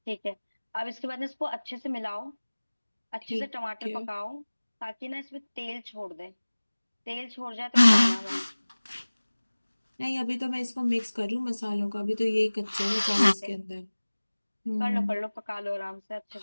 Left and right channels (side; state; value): both; inverted; correlation -1.00